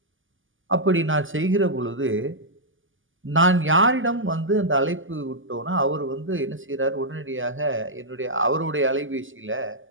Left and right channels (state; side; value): late; left; 0.58 ms